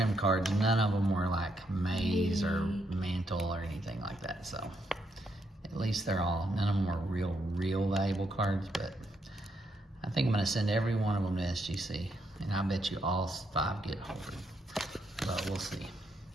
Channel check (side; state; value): both; normal; correlation 0.77